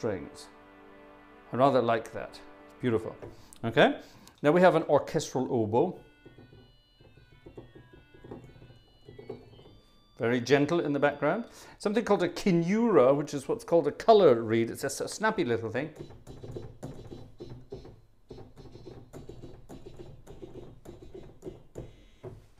I rather like that. It's beautiful. Okay. Now we have an orchestral oboe. Very gentle in the background. Something called a kinura, which is what's called a color reed. It's a snappy little thing.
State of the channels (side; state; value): both; identical; correlation 1.00